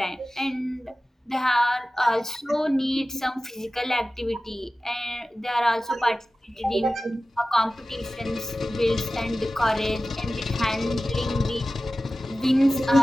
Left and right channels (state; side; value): normal; both; correlation 0.96